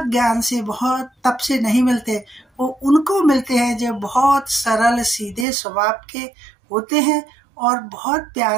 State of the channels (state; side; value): drops out; left; at 5.5 s